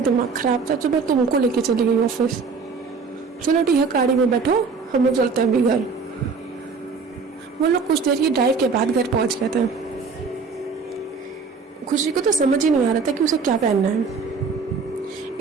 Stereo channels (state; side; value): quieter; left; 4.9 dB